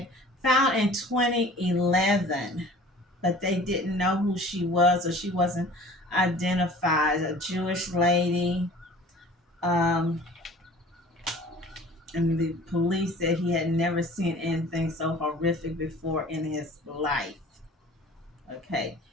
found in 2011, but they didn't know who she was, or she wasn't identified. A Jewish lady. And the police said he had never seen anything so horrific before in his life. Okay,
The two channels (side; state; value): both; normal; correlation 0.46